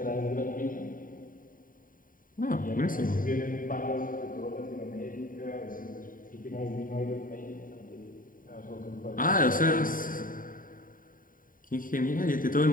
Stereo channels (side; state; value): right; late; 0.40 ms